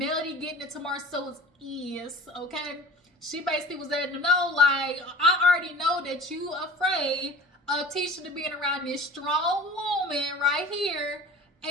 getting into Marsau's ears. Okay, she basically was letting them know, like, I already know that you afraid of Tisha to being around this strong woman right here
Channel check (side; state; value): both; normal; correlation 0.42